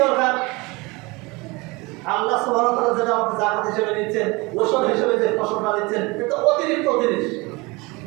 দরকার? আল্লাহ সুবহানাহু ওয়া তাআলা যেটা আমাকে যাকাত হিসেবে দিচ্ছেন, ওষুধ হিসেবে যে ফসলটা দিচ্ছেন, এটা অতিরিক্ত জিনিস।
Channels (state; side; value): quieter; left; 24.8 dB